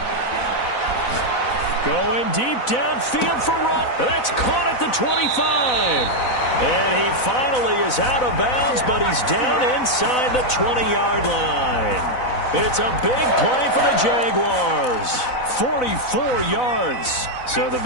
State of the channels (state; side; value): late; right; 4.0 ms